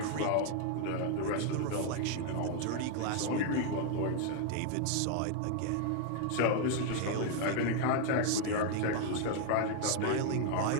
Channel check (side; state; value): both; different; correlation 0.00